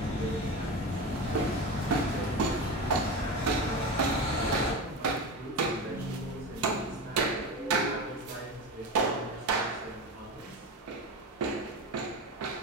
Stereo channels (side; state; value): both; normal; correlation 0.23